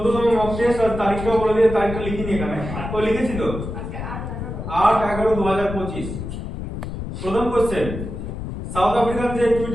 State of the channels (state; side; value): noise; left; rumble, 7 dB below the sound